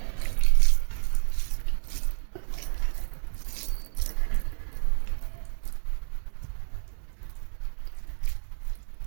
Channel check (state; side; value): silent; left; digital silence